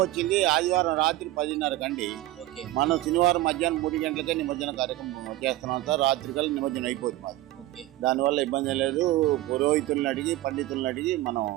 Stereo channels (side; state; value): left; quieter; 16.2 dB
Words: వచ్చింది ఆదివారం రాత్రి 10:30 అండి. మనం శనివారం మధ్యాహ్నం 3 గంటలకే నిమజ్జన కార్యక్రమం చేస్తున్నాం సార్. రాత్రి కల్లా నిమజ్జనం అయిపోతుంది మాది. దానివల్ల ఇబ్బంది లేదు. పురోహితులను అడిగి పండితులను అడిగి మనం